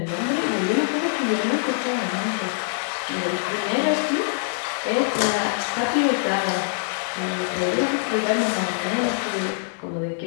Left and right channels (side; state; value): right; silent; digital silence